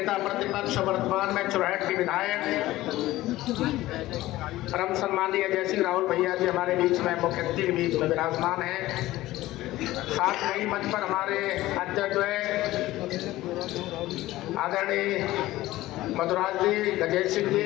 प्रतिपक्ष, वर्तमान में चुरहट के विधायक परम सम्मानीय अजय सिंह राहुल भैया जी हमारे बीच में, मुख्य अतिथि के बीच में विराजमान हैं। साथ में ही मंच पर हमारे अध्यक्ष आदरणीय मधुराज जी, गजेश सिंह जी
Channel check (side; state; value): right; quieter; 16.7 dB